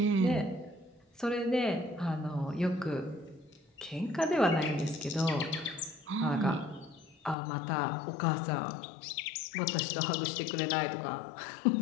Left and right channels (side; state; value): right; drops out; at 7.4 s